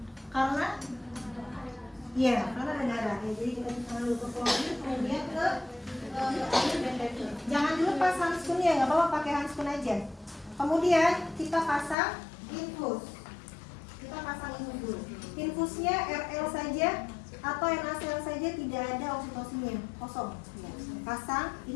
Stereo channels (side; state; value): right; drops out; at 12.0 s